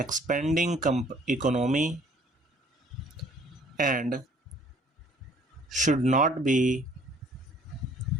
economy, and should not be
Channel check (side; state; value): both; normal; correlation 0.57